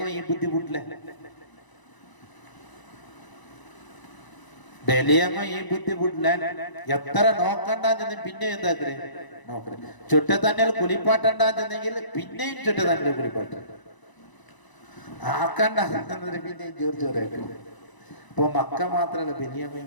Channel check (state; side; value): late; right; 1.0 ms